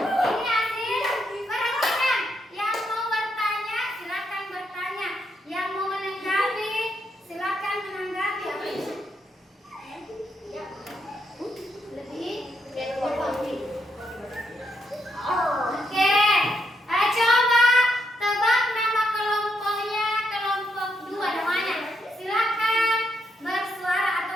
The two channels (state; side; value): normal; both; correlation 0.79